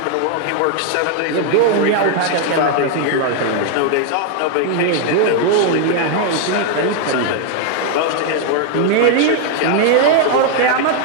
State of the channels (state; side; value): different; both; correlation 0.00